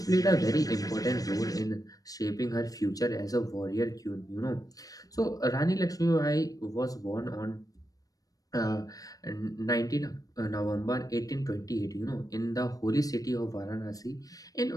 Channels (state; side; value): late; right; 0.18 ms